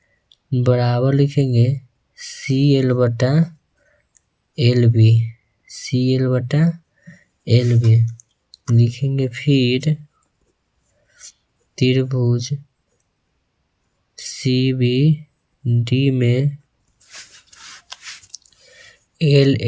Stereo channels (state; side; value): identical; both; correlation 1.00